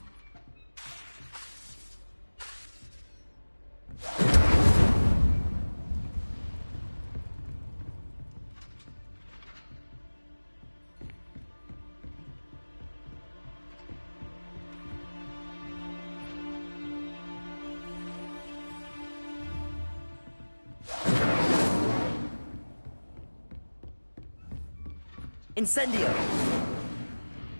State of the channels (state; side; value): inverted; both; correlation -1.00